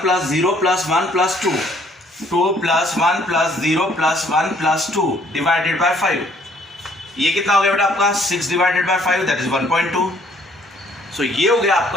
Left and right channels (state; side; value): normal; both; correlation 0.62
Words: 0 + 1 + 2, 2 + 1 + 0 + 1 + 2 डिवाइडेड बाय 5। ये कितना हो गया बेटा आपका, 6 डिवाइडेड बाय 5 दैट इज 1.2। सो ये हो गया